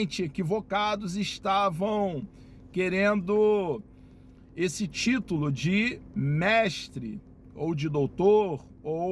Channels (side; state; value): both; identical; correlation 1.00